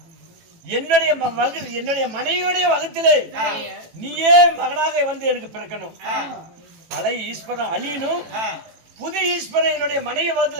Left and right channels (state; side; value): late; left; 18 ms